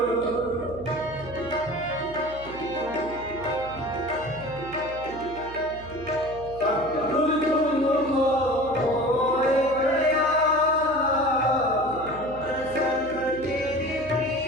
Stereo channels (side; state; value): right; noise; hum, 16 dB below the sound